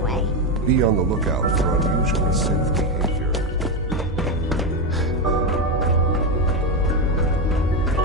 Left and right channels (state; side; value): normal; both; correlation 0.11